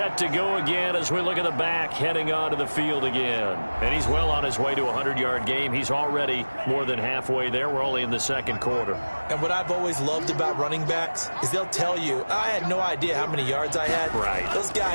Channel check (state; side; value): inverted; both; correlation -1.00